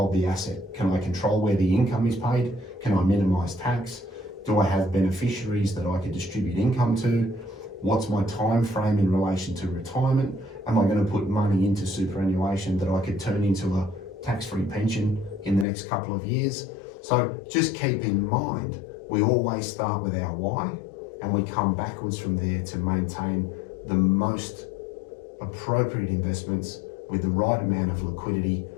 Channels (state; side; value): drops out; right; at 15.7 s